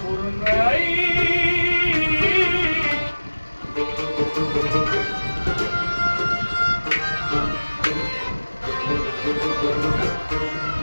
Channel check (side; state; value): both; inverted; correlation -1.00